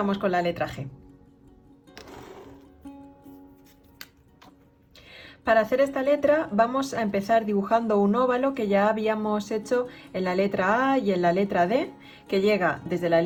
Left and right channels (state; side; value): identical; both; correlation 1.00